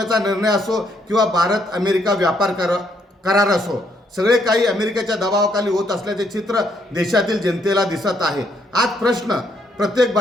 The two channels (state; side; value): normal; both; correlation 0.72